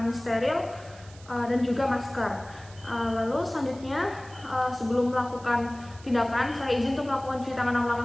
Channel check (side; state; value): right; noise; hiss, 22 dB below the sound